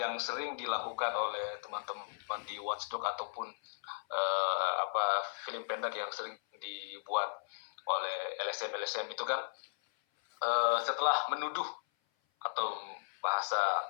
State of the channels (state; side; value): silent; right; 54 dB below the other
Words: sering dilakukan oleh teman-teman di Watchdog ataupun film pendek yang sering dibuat oleh LSM itu kan, setelah menuduh atau bahasa